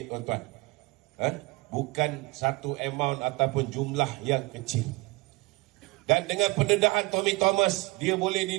tuan-tuan. Bukan satu amount ataupun jumlah yang kecil. Dan dengan pendedahan Tommy Thomas, dia boleh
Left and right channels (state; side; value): quieter; left; 24.1 dB